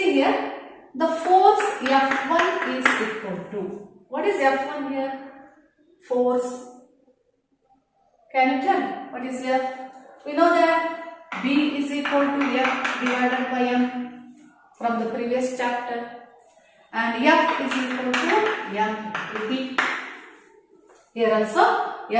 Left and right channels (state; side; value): identical; both; correlation 1.00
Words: here, the force F1 is equal to, what is F1 here? Force. Can you tell what is F? We know that B is equal to F divided by M from the previous chapter, and F is equal to M into B. Here also